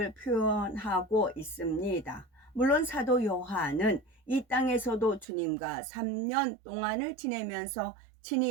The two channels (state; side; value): drops out; left; at 5.2 s